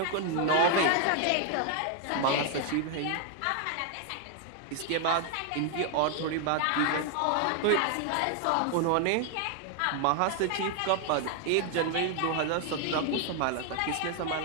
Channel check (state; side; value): different; both; correlation 0.00